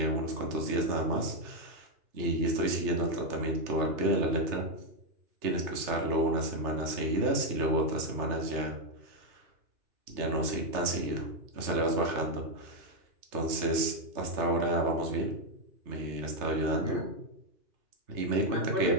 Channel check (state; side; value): late; left; 3.3 ms